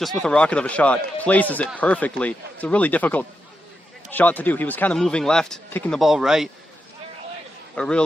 with a rocket of a shot, places it perfectly. It's a really difficult shot to do. He was kind of moving left, kicking the ball right. A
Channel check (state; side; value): normal; both; correlation 0.86